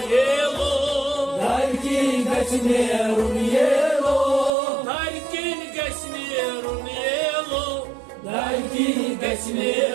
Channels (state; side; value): drops out; left; at 4.5 s